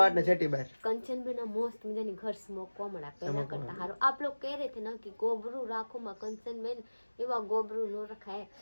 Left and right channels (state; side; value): inverted; both; correlation -1.00